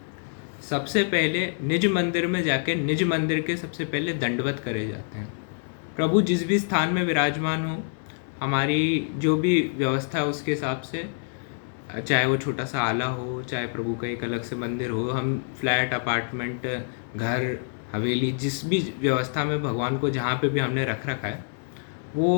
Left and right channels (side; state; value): right; silent; digital silence